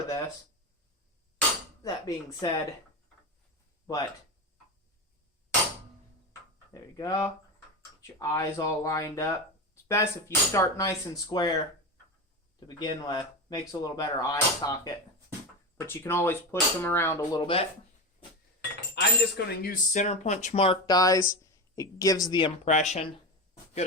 this. That being said, but there you go. Get your eyes all lined up. It's best if you start nice and square to begin with. Makes a little better eye socket. But you can always push them around a little bit. I'm just going to use center punch mark dies. It gives the impression. Good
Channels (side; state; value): both; normal; correlation 0.20